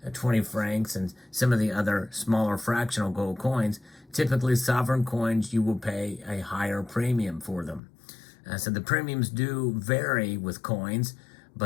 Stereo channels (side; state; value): right; drops out; at 7.8 s